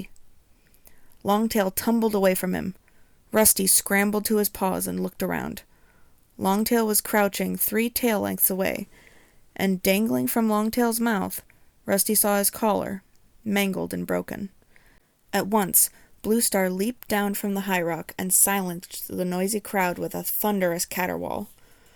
Longtail tumbled away from him. Rusty scrambled to his paws and looked around. Longtail was crouching 3 tail lengths away, and dangling from Longtail's mouth, Rusty saw his collar, mangled and broken. At once, Bluestar leaped down from the high rock and silenced the noisy crowd with a thunderous caterwaul.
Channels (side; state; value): both; identical; correlation 1.00